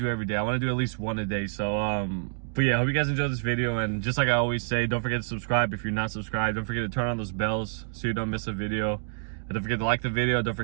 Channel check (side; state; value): left; silent; digital silence